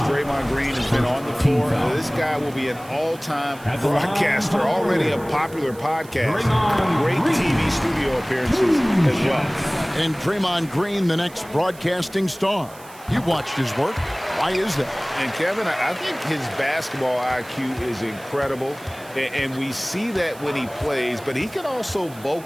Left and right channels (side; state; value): right; noise; hiss, 21 dB below the sound